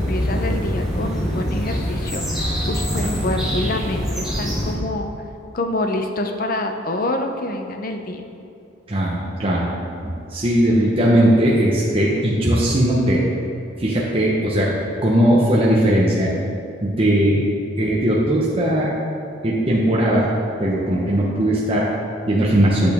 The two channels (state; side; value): normal; both; correlation 0.68